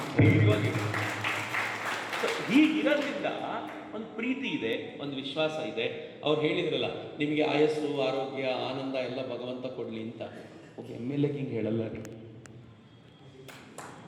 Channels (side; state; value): both; identical; correlation 1.00